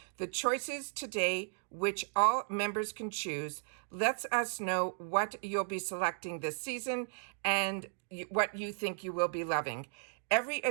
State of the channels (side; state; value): left; silent; digital silence